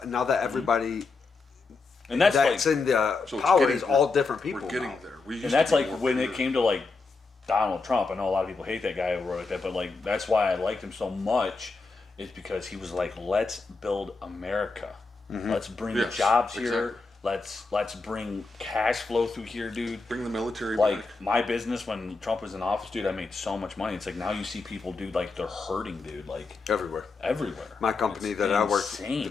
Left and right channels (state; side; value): quieter; right; 4.0 dB